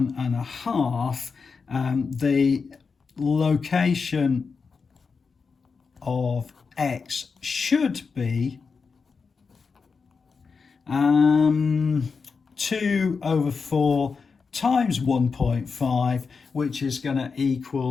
the location of x should be 2/4 times 1.5, which is going to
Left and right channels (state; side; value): quieter; right; 5.1 dB